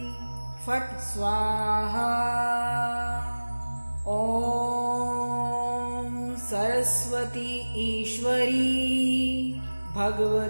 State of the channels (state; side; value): inverted; both; correlation -1.00